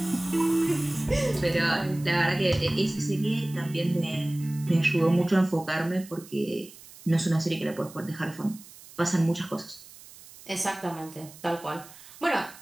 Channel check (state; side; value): noise; right; hiss, 20 dB below the sound